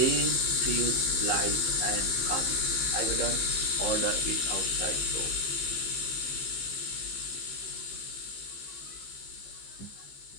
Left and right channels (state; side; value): late; right; 15 ms